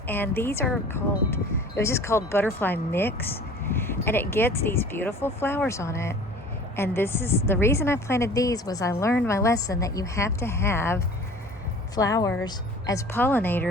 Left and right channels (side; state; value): both; normal; correlation 0.45